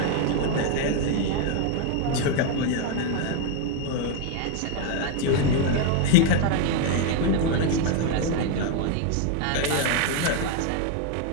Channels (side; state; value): both; different; correlation 0.01